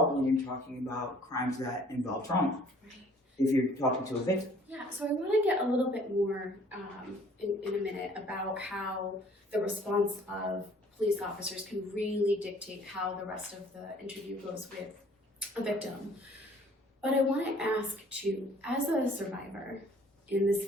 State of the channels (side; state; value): both; normal; correlation 0.56